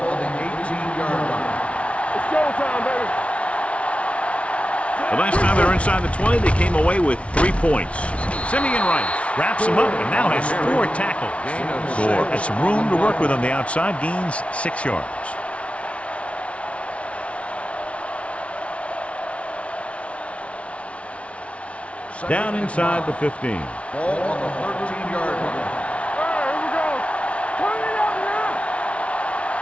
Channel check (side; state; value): right; late; 0.062 ms